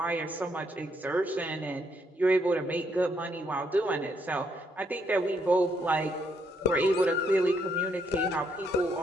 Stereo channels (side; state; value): both; normal; correlation 0.74